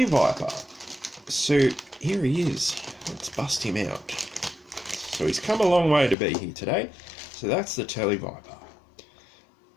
So here he is. Let's bust him out. So he's come a long way to be here today. So that's the Tele-Viper.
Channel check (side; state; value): right; drops out; at 6.2 s